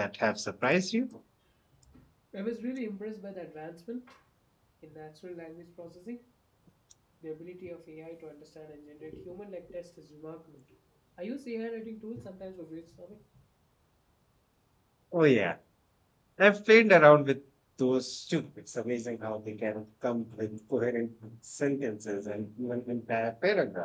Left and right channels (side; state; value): both; identical; correlation 1.00